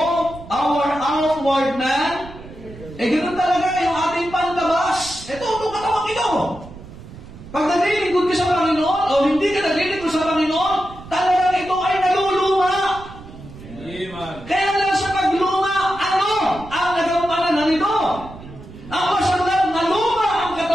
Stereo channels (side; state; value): right; noise; rumble, 16 dB below the sound